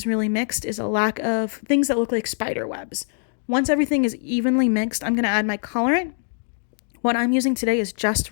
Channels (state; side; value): silent; right; 63 dB below the other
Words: really mixed is a lack of things that look like spider webs. Once everything is evenly mixed, I'm going to add my colorant. What I'm using today is Just